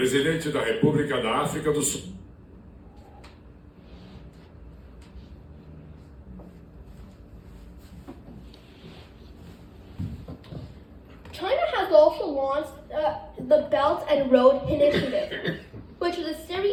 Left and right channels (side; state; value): both; identical; correlation 1.00